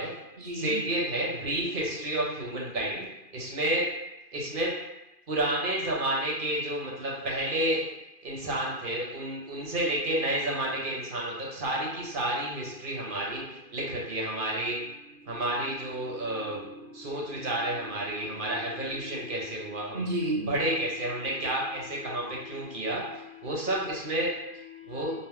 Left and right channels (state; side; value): late; left; 2.5 ms